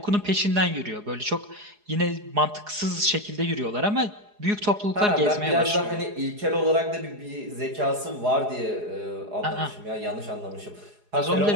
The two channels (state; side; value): late; left; 4.8 ms